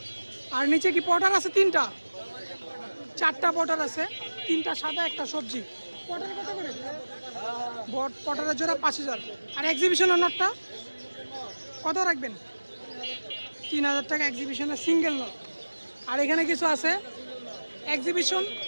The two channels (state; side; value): inverted; both; correlation -1.00